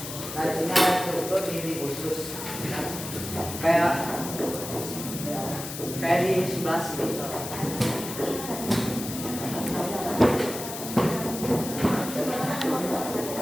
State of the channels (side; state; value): left; noise; hiss, 8 dB below the sound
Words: Nah, di sini ada struktur dinding usus. Kayak di sebelah sini.